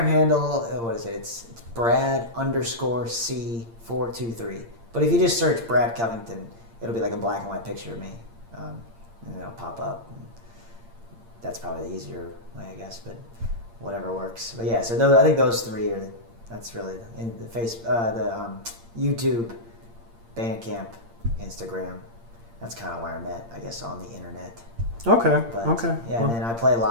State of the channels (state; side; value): late; left; 8.7 ms